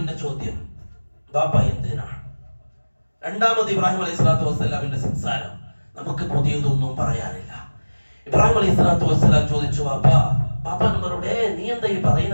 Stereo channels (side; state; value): both; inverted; correlation -1.00